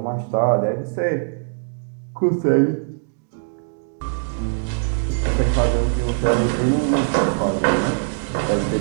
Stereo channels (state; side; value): silent; left; digital silence